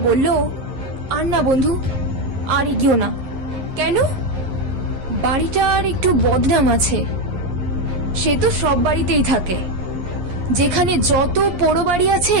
বলল, আর না বন্ধু, আর এগিও না। কেন? বাড়িটার একটু বদনাম আছে। সে তো সব বাড়িতেই থাকে, যেখানে যত পোড়ো বাড়ি আছে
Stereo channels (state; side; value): late; left; 11 ms